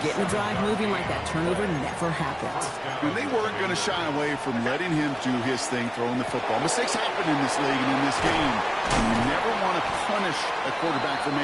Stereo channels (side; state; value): both; identical; correlation 1.00